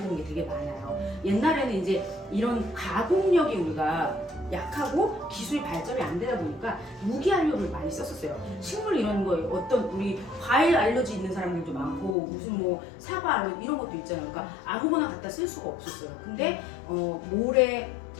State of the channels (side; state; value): right; drops out; at 12.2 s